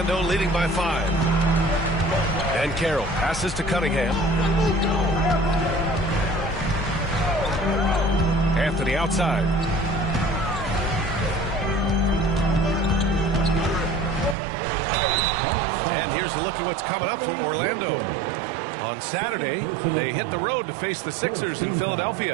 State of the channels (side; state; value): left; drops out; at 14.4 s